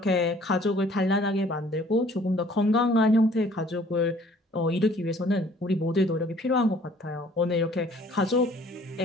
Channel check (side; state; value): both; normal; correlation 0.56